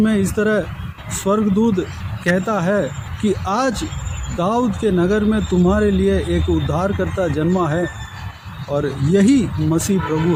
इस तरह स्वर्गदूत कहता है कि आज दाऊद के नगर में तुम्हारे लिए एक उद्धारकर्ता जन्मा है और यही मसीह प्रभु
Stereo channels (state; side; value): identical; both; correlation 1.00